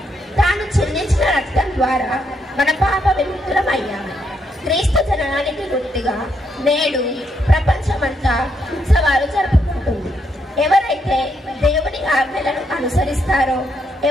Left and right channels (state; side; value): normal; both; correlation 0.77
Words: తాను చెల్లించిన రక్తం ద్వారా మన పాప విముక్తులం అయ్యాము. క్రీస్తు జననానికి గుర్తుగా నేడు ప్రపంచమంతా ఉత్సవాలు జరుపుకుంటుంది. ఎవరైతే దేవుని ఆజ్ఞలను అనుసరిస్తారో,